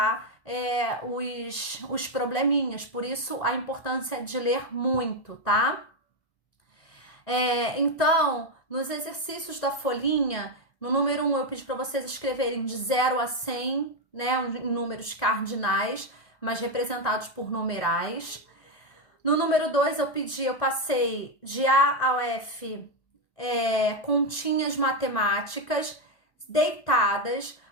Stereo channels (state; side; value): late; right; 1.6 ms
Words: os probleminhas, por isso a importância de ler muito, tá? Então, nos exercícios da folhinha, no número 1 eu pedi para vocês escreverem de 0 a 100, né, em números cardinais, mas representados por numerais. No número 2 eu passei de A ao F, continhas matemáticas deitadas,